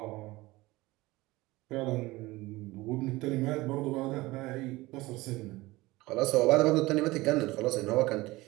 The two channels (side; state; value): left; quieter; 20.1 dB